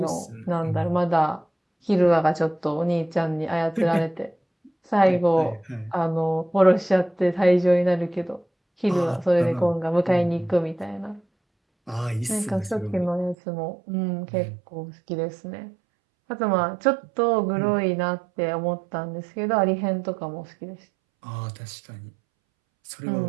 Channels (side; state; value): left; drops out; at 13.4 s